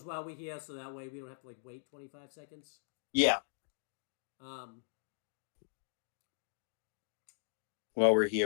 while we're here, so that way we don't have to wait 25 seconds. Yeah. While we're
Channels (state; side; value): silent; right; digital silence